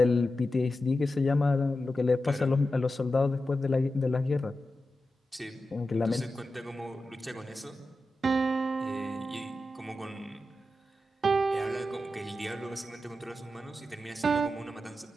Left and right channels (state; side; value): normal; both; correlation 0.91